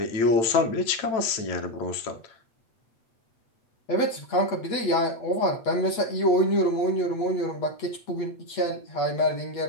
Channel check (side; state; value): right; late; 8.4 ms